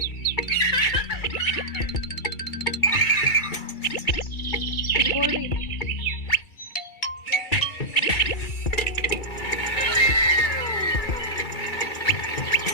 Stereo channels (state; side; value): late; right; 2.3 ms